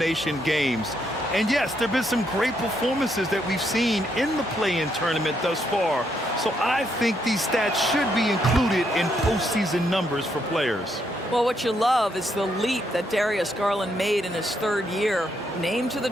games. And, yes, there have been some great performances that we've seen in the play-in tournament thus far. So I think these stats should be included in postseason numbers for players. Well, what you love is the leap that Darius Garland made in his 3rd year. Named to the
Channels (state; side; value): normal; both; correlation 0.76